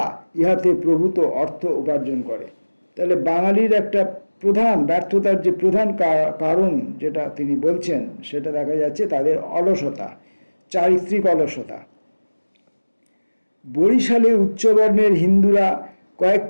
ইহাতে প্রভূত অর্থ উপার্জন করে। তাহলে বাঙালির একটা প্রধান ব্যর্থতার যে প্রধান কারণ যেটা তিনি বলছেন, সেটা দেখা যাচ্ছে তাদের অলসতা, চারিত্রিক অলসতা। বরিশালে উচ্চবর্ণের হিন্দুরা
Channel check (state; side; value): inverted; both; correlation -1.00